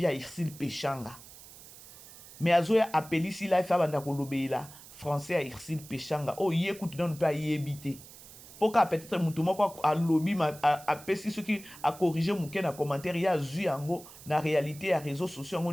à Irsil Pechanga mais azoya appelisi life abanda ko lobela français à Irsil Pechanga oh yekutu nano pa yebité poka peut-être mutu moko a lobby a pesi ce qui a corriger muke na commentaire ya zu yango na réalité ya réseaux sociaux ngo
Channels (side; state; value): right; noise; hiss, 18 dB below the sound